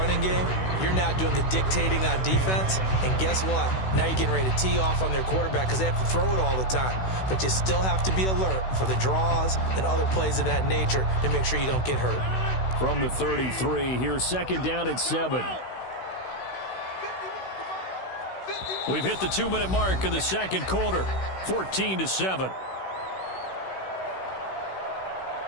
game, you're now doing the dictating on defense. And guess what? Now you're getting ready to tee off on their quarterback because they have to throw it all the time. But you still have to be alert for the draws and other plays of that nature to make sure you don't get hurt. From the 33, here's second down and 7. We've hit the 2-minute mark of the second quarter, 14-7.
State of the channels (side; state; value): right; late; 16 ms